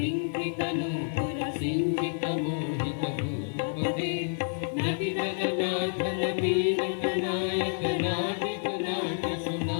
तनु सिंचित मोहित भूपते नटि जगन्नाथ नवीन नायक नाटिक नाट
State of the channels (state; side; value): silent; right; digital silence